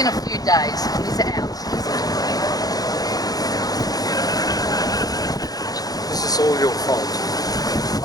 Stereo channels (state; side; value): late; right; 0.18 ms